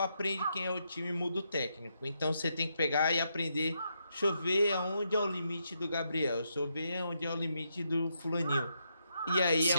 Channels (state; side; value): inverted; both; correlation -0.80